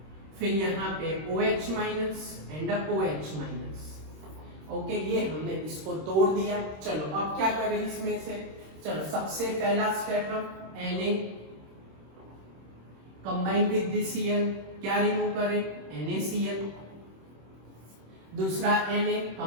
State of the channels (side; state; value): left; late; 26 ms